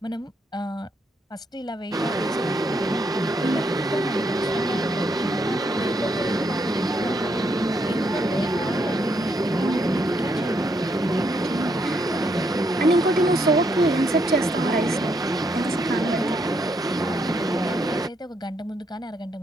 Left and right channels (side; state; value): both; normal; correlation 0.75